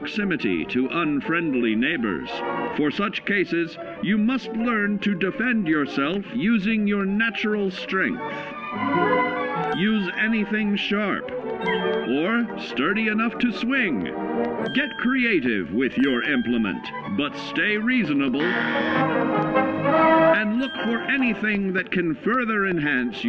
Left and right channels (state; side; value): identical; both; correlation 1.00